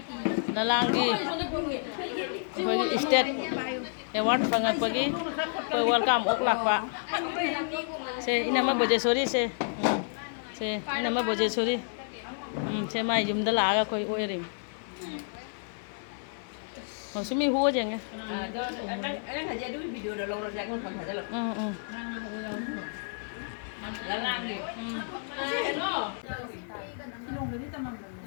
lalang di bagi state award fangakpa gi welcome oklak pak se ini mah Bojesori se ini mah Bojesori se mai jum dah laga koi oirim maksudnya hu aja nggak? Anh aja dulu video udah lorong jangan kan aja loh. Lalang gitu.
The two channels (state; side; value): silent; right; 58 dB below the other